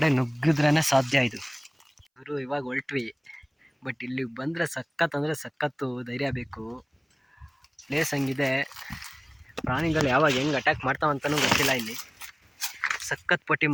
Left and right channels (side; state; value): both; identical; correlation 1.00